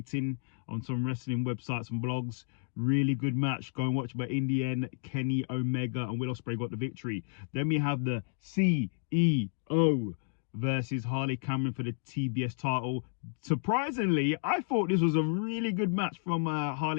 on some wrestling websites and blogs. Really good match. Go and watch. But in the end, Kenny Omega and Will Ospreay got the victory. Then we have the CEO versus Harley Cameron for the TBS title. Surprisingly, I thought this was a really good match from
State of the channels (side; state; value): right; silent; digital silence